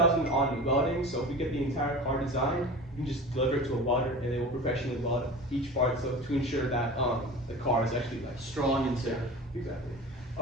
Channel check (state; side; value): normal; both; correlation 0.34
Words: on welding. So if we get the entire car designed, we can just deliver it to a welder and they will professionally weld each part, so to ensure that the car is actually like Strong and safe. exactly.